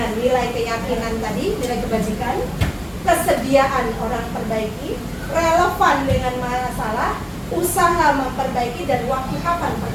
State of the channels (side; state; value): both; identical; correlation 1.00